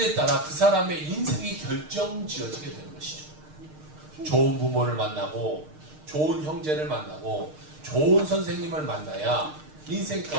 따라 그 사람의 인생이 결정지어지게 되는 것이죠. 좋은 부모를 만나고 좋은 형제를 만나고 좋은 선생님을 만나야 인생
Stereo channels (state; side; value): late; left; 6.5 ms